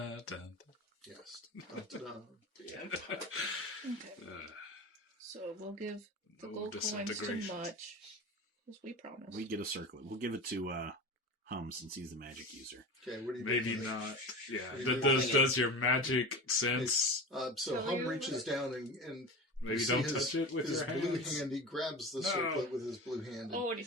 dun. Yes. Dun-dun. Okay. So we'll give the No gold coins to disintegration. Much, as we promised. We get a circlet. We'll give it to Hum since he's the magic user. Okay, what do you Maybe do? not. Yeah. What do you Does your magic sense... So Tell Hum you reaches down and Maybe you see don't his, touch it with his your blue hands? hand. He grabs the No. circlet with his blue hand. Oh, and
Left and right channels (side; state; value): both; normal; correlation 0.30